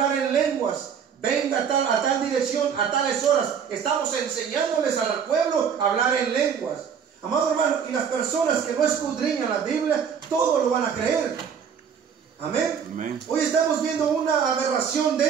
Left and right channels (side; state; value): left; quieter; 7.3 dB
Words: en lenguas, venga a tal dirección, a tales horas. Estamos enseñándoles al pueblo a hablar en lenguas. Amado hermano, y las personas que no escudriñan la Biblia, todo lo van a creer. Amén. Amén. Hoy estamos viendo una aberración